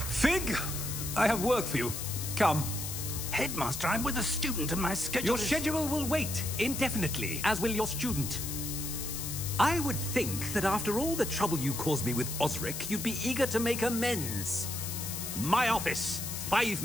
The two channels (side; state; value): left; noise; hiss, 5 dB below the sound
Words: Fig! I have work for you. Come. Headmaster, I'm with a student and my schedule Your is... schedule will wait indefinitely, as will your student. I would think that after all the trouble you caused me with Osric, you'd be eager to make amends. My office, 5